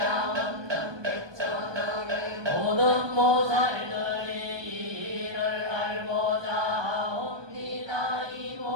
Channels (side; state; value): left; late; 1.2 ms